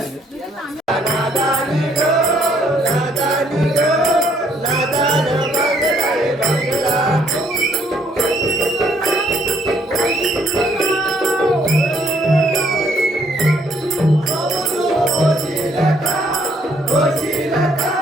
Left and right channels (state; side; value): normal; both; correlation 0.67